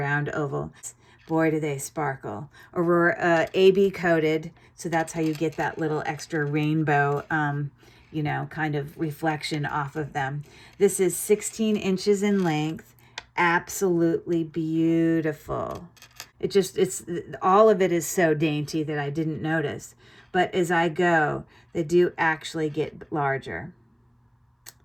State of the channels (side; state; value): both; identical; correlation 1.00